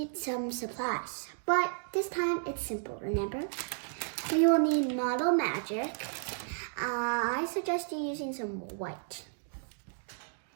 some supplies, but this time it's simple, remember? We will need Model Magic. I suggest you using some white.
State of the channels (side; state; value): left; silent; digital silence